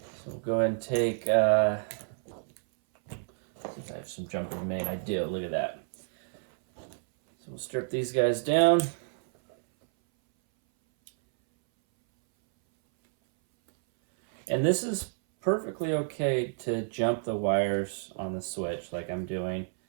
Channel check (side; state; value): left; silent; 58 dB below the other